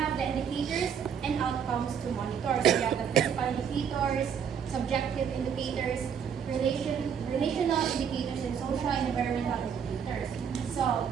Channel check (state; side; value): quieter; left; 7.6 dB